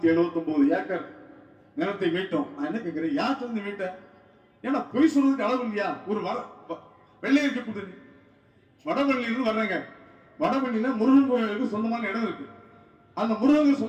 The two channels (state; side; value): identical; both; correlation 1.00